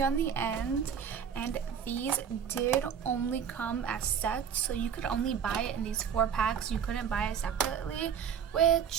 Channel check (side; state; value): left; quieter; 7.7 dB